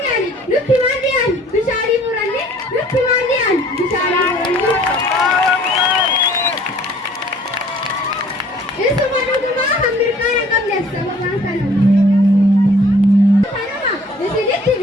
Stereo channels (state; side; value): normal; both; correlation 0.55